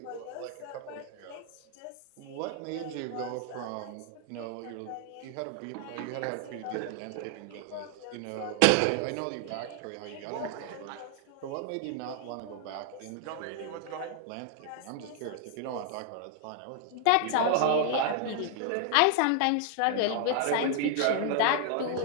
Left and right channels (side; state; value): both; different; correlation -0.01